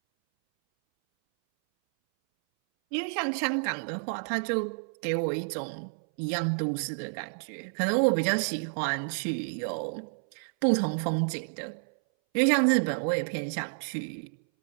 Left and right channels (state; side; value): silent; left; 58 dB below the other